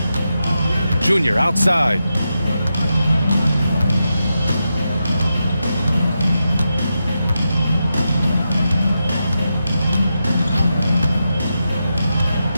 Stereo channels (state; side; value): inverted; both; correlation -0.88